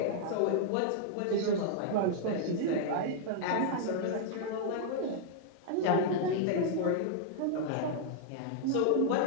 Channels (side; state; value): both; different; correlation -0.01